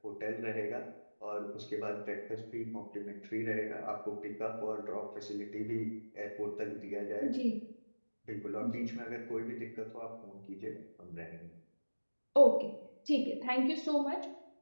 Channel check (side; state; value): both; inverted; correlation -1.00